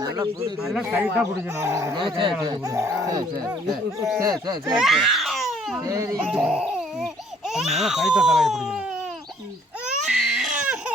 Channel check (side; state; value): both; normal; correlation 0.61